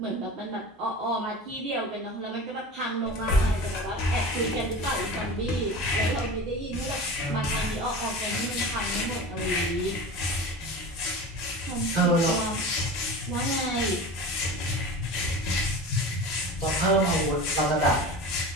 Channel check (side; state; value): both; normal; correlation 0.33